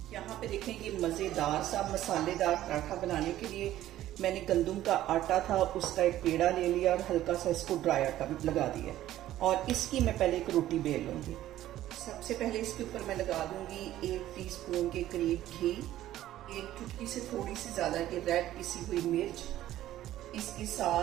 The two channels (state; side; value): quieter; left; 13.6 dB